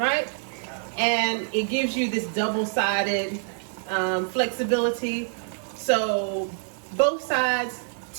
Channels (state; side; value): silent; left; 61 dB below the other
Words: And it gives you this double-sided flexibility. So both sides